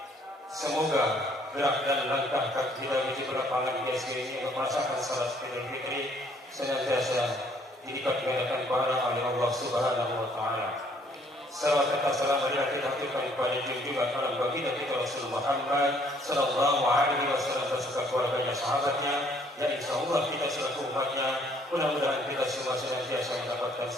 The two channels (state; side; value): normal; both; correlation 0.63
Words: Semoga gerak dan langkah kaki kita menuju ke lapangan di SD ini untuk melaksanakan salat Idul Fitri senantiasa dilipat gandakan pahala oleh Allah Subhanahu wa taala. Salawat serta salam marilah kita haturkan kepada junjungan alam baginda kita Rasul Muhammad sallallahu alaihi wasallam beserta keluarganya, sahabatnya, dan insyaallah kita selaku umatnya mudah-mudahan kita semua senantiasa mendapatkan